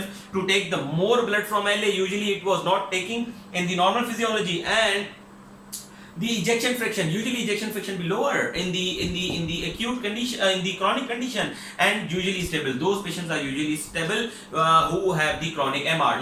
to take the more blood from LA. Usually it was not taking in the normal physiology, and the ejection fraction, usually ejection fraction be lower in the acute condition, in the chronic condition, and usually stable. Those patients are usually stable who have the chronic MR.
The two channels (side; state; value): both; identical; correlation 1.00